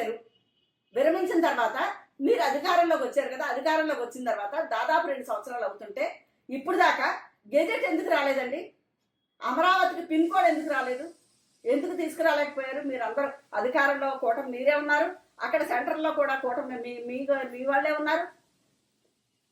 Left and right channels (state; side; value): identical; both; correlation 1.00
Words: విరమించిన తర్వాత మీరు అధికారంలోకి వచ్చారు కదా, అధికారంలోకి వచ్చిన తర్వాత దాదాపు 2 సంవత్సరాలు అవుతుంటే ఇప్పుడు దాకా గెజెట్ ఎందుకు రాలేదండి? అమరావతికి పిన్ కోడ్ ఎందుకు రాలేదు? ఎందుకు తీసుకురాలేకపోయారు? మీరు అందరూ అధికారంలో కూటమి మీరే ఉన్నారు, అక్కడ సెంటర్లో కూడా కూటమి మీ వాళ్ళే ఉన్నారు.